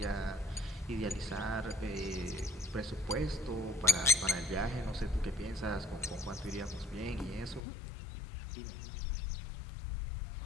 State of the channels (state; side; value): drops out; right; at 7.6 s